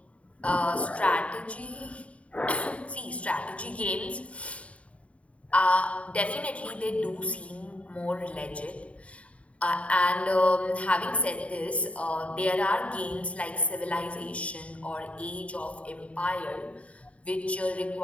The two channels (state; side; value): late; right; 0.065 ms